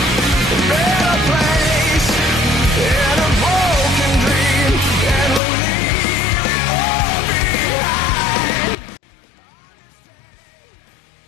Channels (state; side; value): drops out; right; at 5.4 s